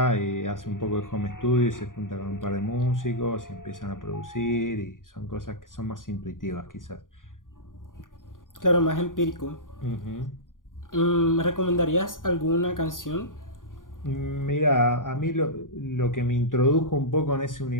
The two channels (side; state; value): right; late; 0.89 ms